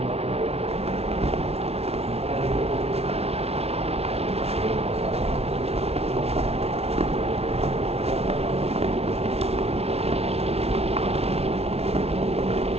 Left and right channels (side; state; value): left; late; 0.30 ms